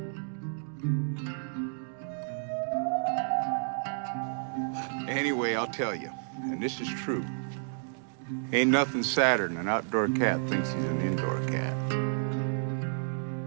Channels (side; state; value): left; silent; digital silence